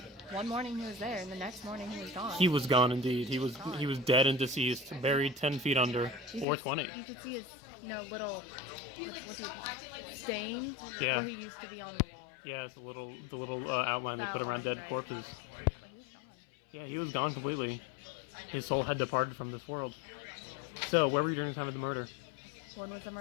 one morning he was there, and the next morning he was gone. He was gone indeed. He was dead and deceased, buried 10 feet under, or 20. You could see his, little, stain Yeah. where he used to be on the wall. Yeah, it's the little outline they put around dead corpses. Yeah, he was gone completely. His soul had departed from this world. So, where were you during the time of the murder? When was the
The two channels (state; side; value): drops out; right; at 6.5 s